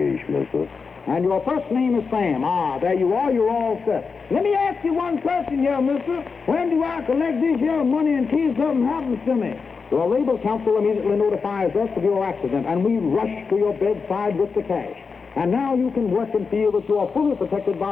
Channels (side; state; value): right; quieter; 5.1 dB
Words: mister. And your first name is Sam. Ah, there you are. You're all set. Let me ask you one question here, mister. When do I collect this here money in case something happens to me? Your labor counsel immediately notifies us of your accident, and we rush to your bedside with the cash. And now you can work and feel that you are fully protected